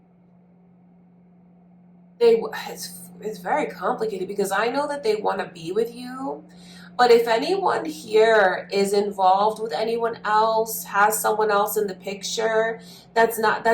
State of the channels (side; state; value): both; identical; correlation 1.00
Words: it's very complicated, because I know that they want to be with you, but if anyone here is involved with anyone else, has someone else in the picture, that's not